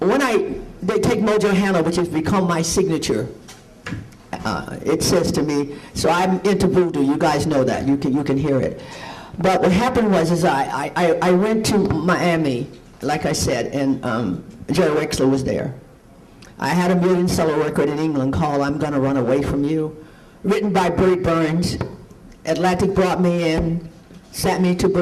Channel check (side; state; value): both; identical; correlation 1.00